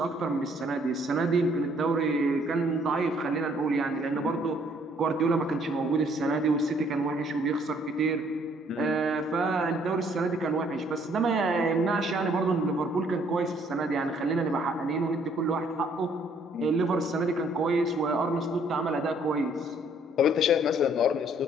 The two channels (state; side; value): normal; both; correlation 0.63